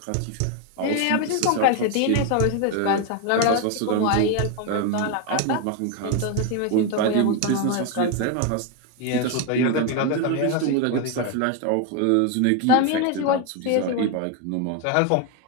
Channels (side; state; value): both; different; correlation 0.01